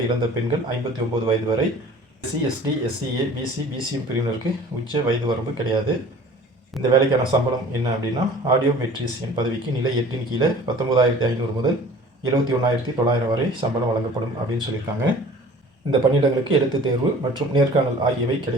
இழந்த பெண்கள் 59 வயது வரை, SC, ST, SCA, BC, BCM பிரிவினருக்கு உச்ச வயது வரம்பு கிடையாது. இந்த வேலைக்கான சம்பளம் என்ன அப்படின்னா, ஆடியோ மெட்ரிசியன் பதவிக்கு நிலை 8 கீழே 19,500 முதல் 71,900 வரை சம்பளம் வழங்கப்படும் அப்படின்னு சொல்லியிருக்காங்க. இந்த பணியிடங்களுக்கு எழுத்துத் தேர்வு மற்றும் நேர்காணல் ஆகியவை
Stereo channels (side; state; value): both; normal; correlation 0.46